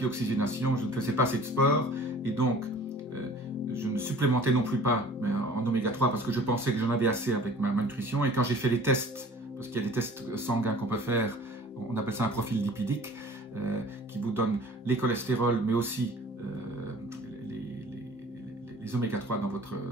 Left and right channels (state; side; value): normal; both; correlation 0.47